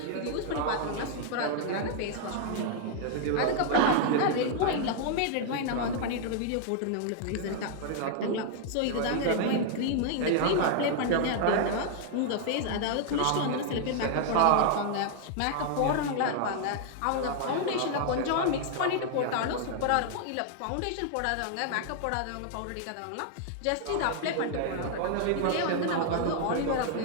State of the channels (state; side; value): different; both; correlation -0.01